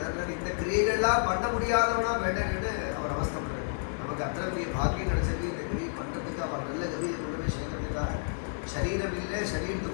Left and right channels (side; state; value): right; silent; 58 dB below the other